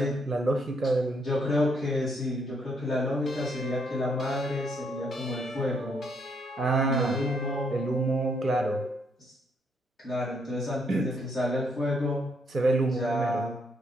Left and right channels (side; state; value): both; normal; correlation 0.72